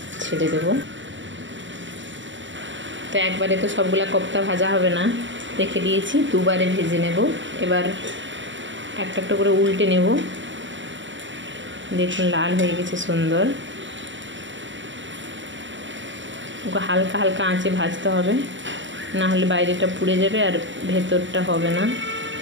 ছেড়ে দেব। তো একবারে তো সবগুলা কোফতা ভাজা হবে না, রেখে দিয়েছি, দুবারে ভেজে নেব। এবার একটা একটা করে উল্টে নেব। দেখুন লাল হয়ে গেছে সুন্দর। ওকে হালকা হালকা আঁচে ভাজতে হবে, না হলে বাইরেটা পুড়ে যাবে আর ভেতরটা হবে না।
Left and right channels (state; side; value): late; left; 0.55 ms